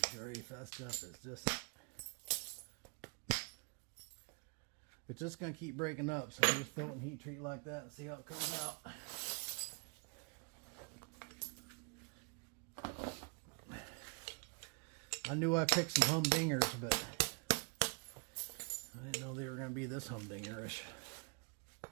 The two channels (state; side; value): quieter; left; 35.7 dB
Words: grief, that stuff is just... It's just going to keep breaking up, so we'll just throw it in heat treat like that and see how it comes out. I knew I picked some humdingers, but I didn't know they were going to be this humdingerish.